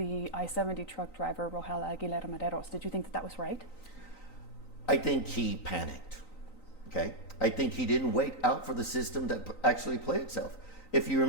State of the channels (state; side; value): late; right; 3.9 ms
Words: I-70 truck driver, Rogel Aguilera Maderos? Did you think that was right? I think he panicked, okay? I think he didn't wait out for the system to actually play itself. If you